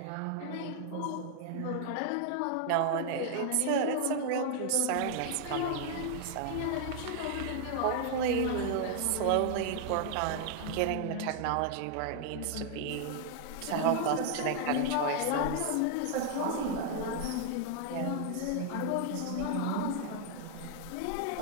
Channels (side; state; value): both; different; correlation 0.00